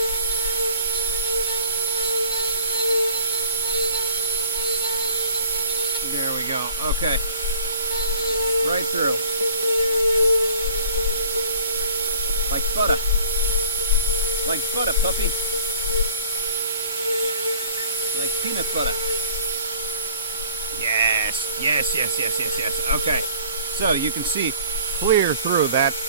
There we go. Okay. Right through. Like butter. Like butter, puppy. Like peanut butter. Yes. Yes, yes, yes, yes, yes. Okay. So you can see clear through that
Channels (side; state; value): both; inverted; correlation -0.52